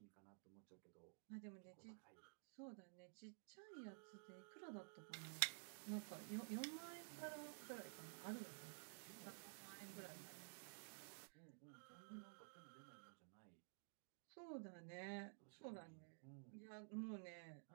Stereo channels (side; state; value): left; silent; digital silence